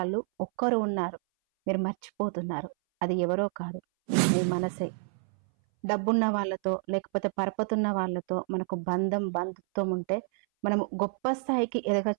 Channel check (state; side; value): silent; left; 59 dB below the other